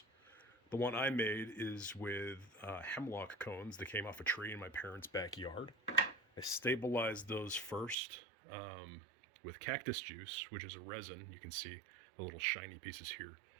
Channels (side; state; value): left; drops out; at 8.0 s